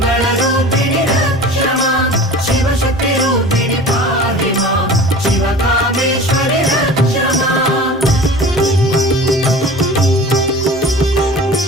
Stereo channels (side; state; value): both; normal; correlation 0.39